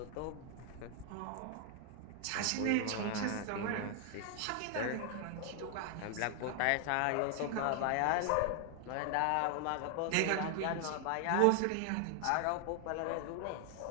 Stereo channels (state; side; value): different; both; correlation 0.00